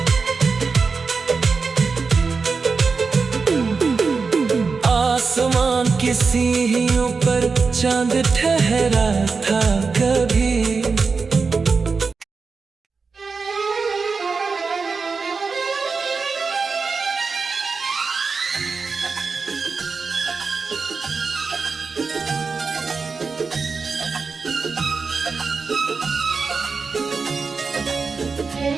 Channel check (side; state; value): left; quieter; 4.7 dB